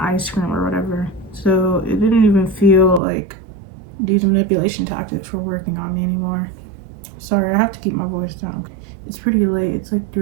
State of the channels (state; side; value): drops out; left; at 3.0 s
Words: cream or whatever. So it didn't even feel like these manipulation tactics were working on me anymore. Sorry, I have to keep my voice down. It's pretty late. It's like